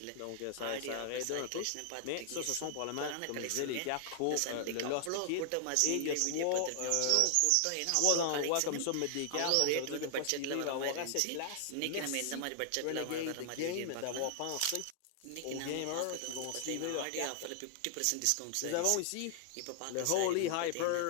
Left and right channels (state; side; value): different; both; correlation 0.00